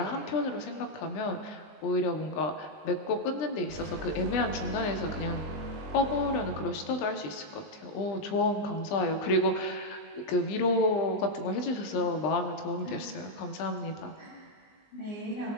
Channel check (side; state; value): right; late; 20 ms